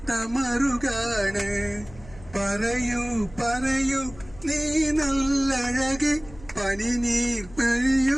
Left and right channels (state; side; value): noise; left; hum, 20 dB below the sound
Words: മറുകാണ് പറയൂ പറയൂ നീ നല്ലഴകെ പനിനീർ